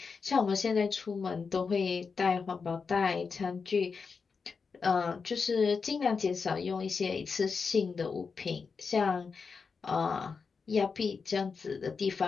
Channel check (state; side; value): quieter; right; 5.2 dB